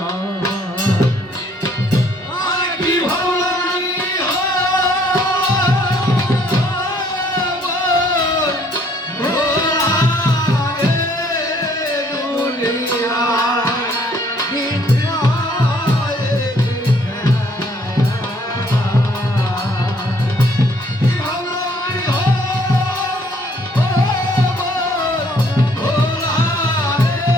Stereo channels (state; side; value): normal; both; correlation 0.63